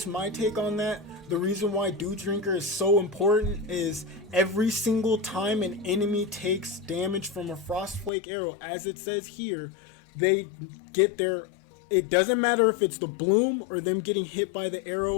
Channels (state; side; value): drops out; right; at 8.1 s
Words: my take on that. The reason why Dew Drinker is so important is every single time an enemy takes damage from a Frostflake arrow, as it says here, they get their, it doesn't matter if it's the bloom or them getting hit by the